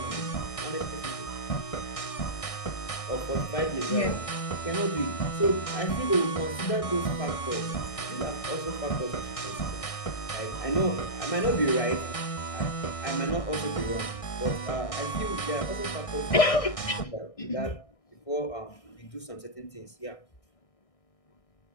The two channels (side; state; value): right; late; 1.6 ms